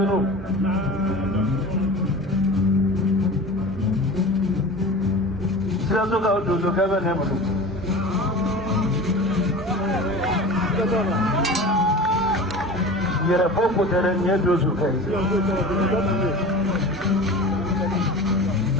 know. Sirazo ka utuzo kaba ne mutu. Yere popo tere nye dozo kai.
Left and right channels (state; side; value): normal; both; correlation 0.35